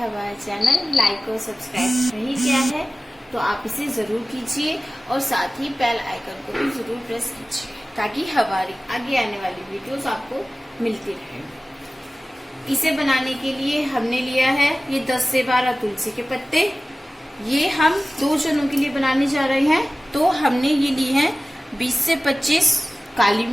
चैनल लाइक और सब्सक्राइब नहीं किया है तो आप इसे जरूर कीजिए और साथ ही बेल आइकन को भी जरूर प्रेस कीजिए, ताकि हमारी आगे आने वाली वीडियोस आपको मिलती रहे। इसे बनाने के लिए हमने लिया है ये 10 से 12 तुलसी के पत्ते। ये हम 2 जनों के लिए बनाने जा रहे हैं, तो हमने ये ली है 20 से 25 काली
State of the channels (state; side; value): normal; both; correlation 0.96